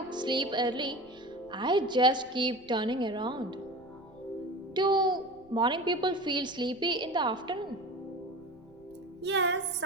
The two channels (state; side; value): noise; left; rumble, 27 dB below the sound